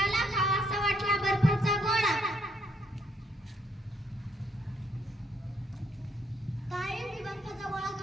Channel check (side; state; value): both; normal; correlation 0.71